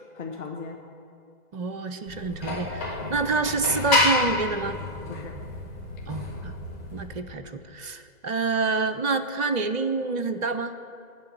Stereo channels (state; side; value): late; left; 2.0 ms